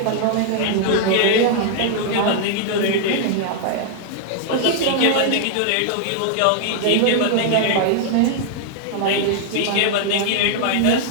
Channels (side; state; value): both; different; correlation -0.01